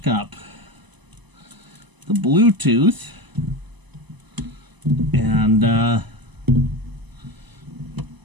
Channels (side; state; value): left; late; 1.0 ms